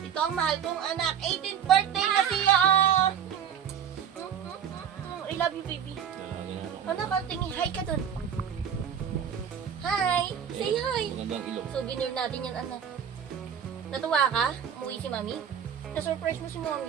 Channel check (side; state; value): left; quieter; 8.4 dB